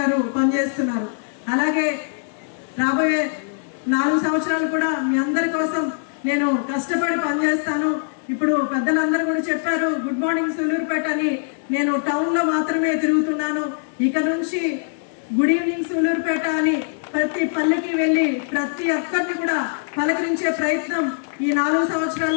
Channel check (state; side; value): silent; right; digital silence